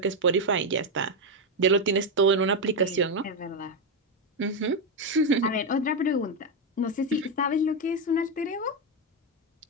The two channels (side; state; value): both; normal; correlation 0.06